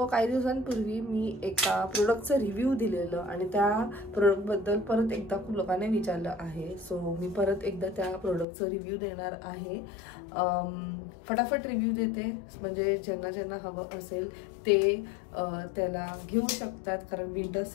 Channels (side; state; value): right; drops out; at 8.5 s